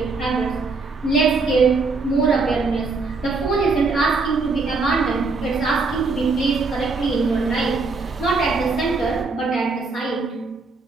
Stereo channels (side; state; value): left; quieter; 4.1 dB